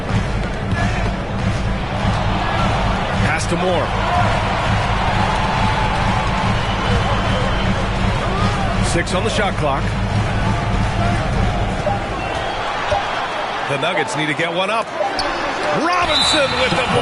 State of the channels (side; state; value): both; identical; correlation 1.00